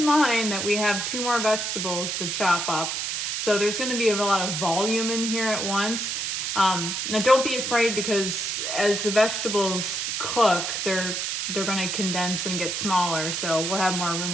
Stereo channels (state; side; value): noise; right; hiss, 2 dB below the sound